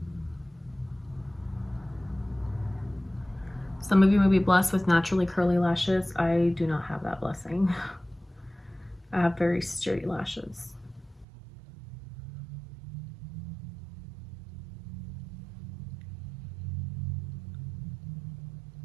Some of you may be blessed with naturally curly lashes. I do not have that blessing. I have very straight lashes.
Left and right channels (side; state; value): left; drops out; at 11.2 s